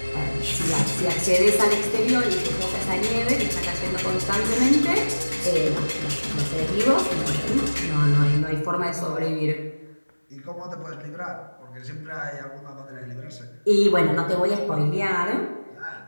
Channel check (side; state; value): both; inverted; correlation -1.00